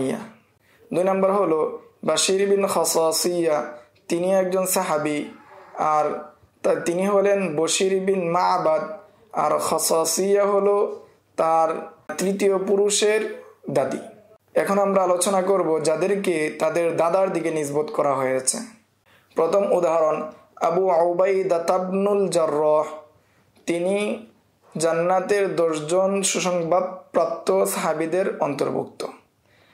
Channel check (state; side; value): identical; both; correlation 1.00